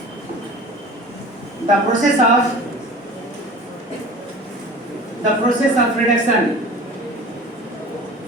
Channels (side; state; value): both; normal; correlation 0.40